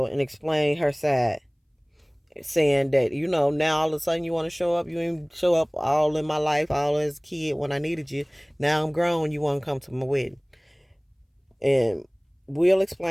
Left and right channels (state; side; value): identical; both; correlation 1.00